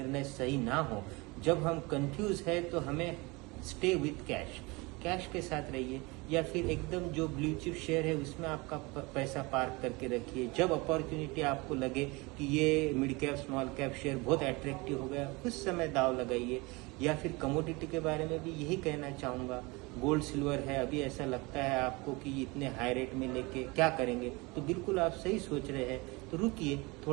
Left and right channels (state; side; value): quieter; left; 25.3 dB